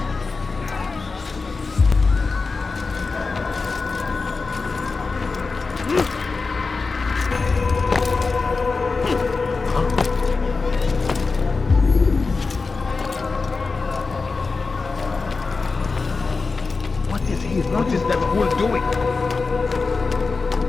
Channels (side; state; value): right; quieter; 4.2 dB